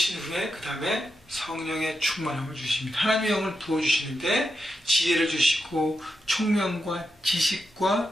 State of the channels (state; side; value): normal; both; correlation 0.86